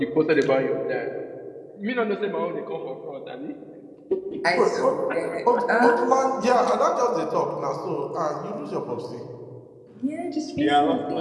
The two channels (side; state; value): both; identical; correlation 1.00